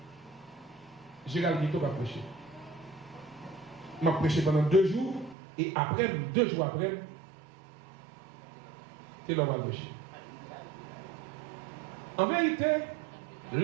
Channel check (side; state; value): left; drops out; at 5.4 s